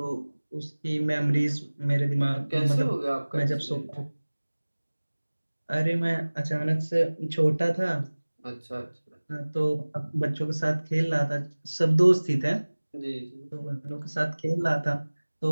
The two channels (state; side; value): inverted; both; correlation -1.00